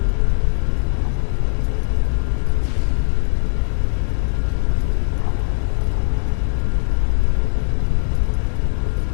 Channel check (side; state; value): right; silent; 66 dB below the other